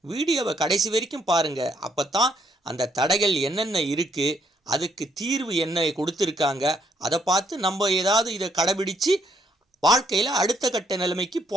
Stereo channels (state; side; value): normal; both; correlation 0.71